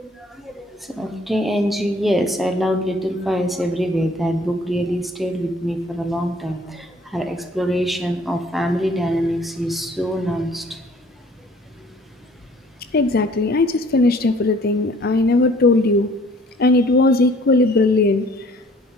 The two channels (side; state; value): both; normal; correlation 0.56